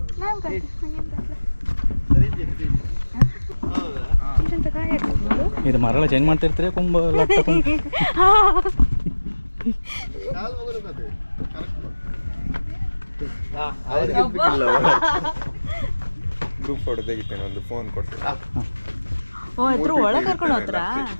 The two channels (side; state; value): both; inverted; correlation -1.00